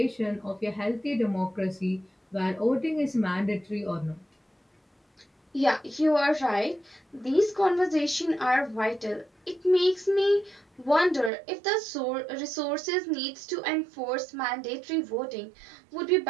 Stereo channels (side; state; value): left; drops out; at 11.3 s